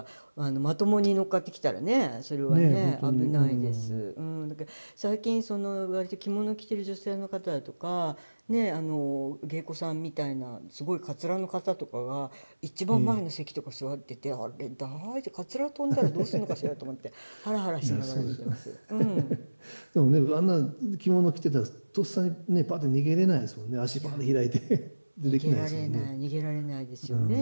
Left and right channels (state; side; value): inverted; both; correlation -1.00